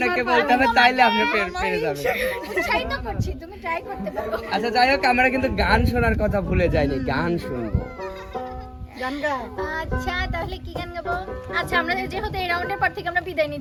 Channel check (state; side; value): identical; both; correlation 1.00